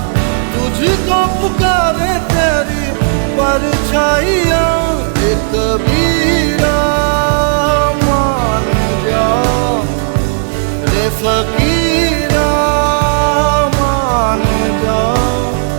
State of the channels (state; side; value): silent; left; digital silence